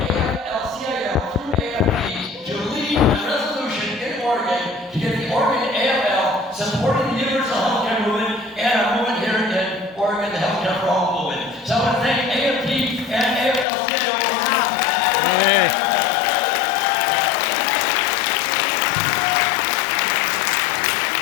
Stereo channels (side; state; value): right; drops out; at 13.7 s